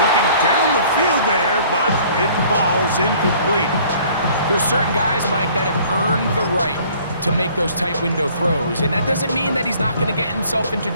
Looking down the field there, but it falls incomplete. There's certain guys, Mike, that have earned the right to make those tight window throws. And that doesn't mean that he's not going to get himself into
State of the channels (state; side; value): inverted; both; correlation -0.55